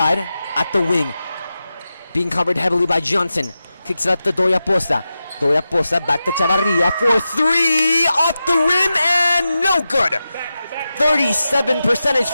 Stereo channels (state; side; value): inverted; both; correlation -0.91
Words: at the wing. Being covered heavily by Johnson. Kicks it up to Doya Poza. Doya Poza back to Chavarria for 3. Off the rim and no good. 37%